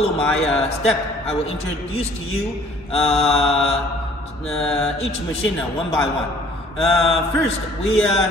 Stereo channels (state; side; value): normal; both; correlation 0.55